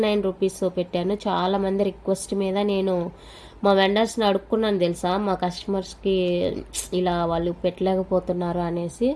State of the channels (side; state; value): both; identical; correlation 1.00